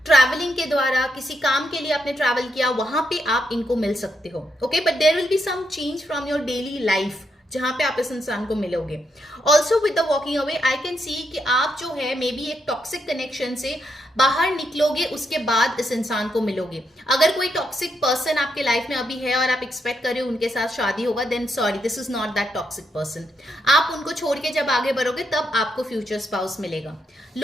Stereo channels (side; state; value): both; normal; correlation 0.80